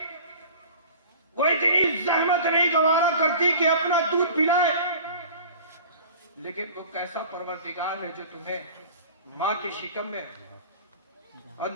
वो इतनी जहमत नहीं गवारा करती कि अपना दूध पिलाए। लेकिन वो कैसा परवरदिगार है जो तुम्हें माँ के शिकम में, और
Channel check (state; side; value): inverted; both; correlation -0.41